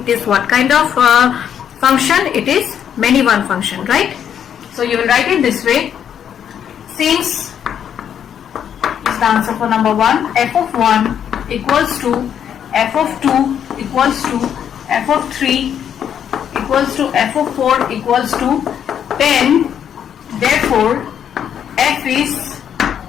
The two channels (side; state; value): right; quieter; 8.9 dB